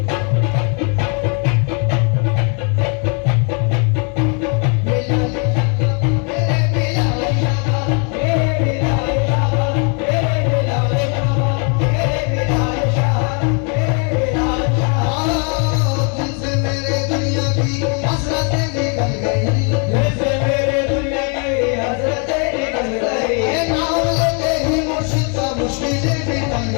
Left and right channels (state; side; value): quieter; right; 37.8 dB